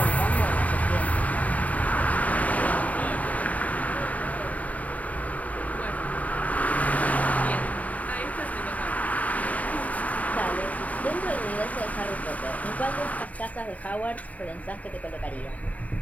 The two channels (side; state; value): right; late; 0.071 ms